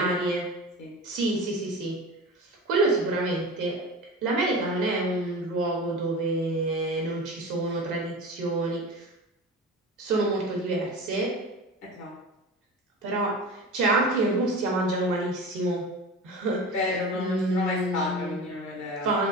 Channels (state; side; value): normal; both; correlation 0.32